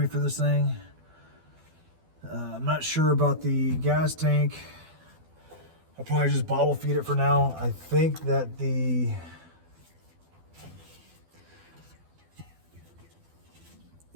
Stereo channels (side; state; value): left; late; 12 ms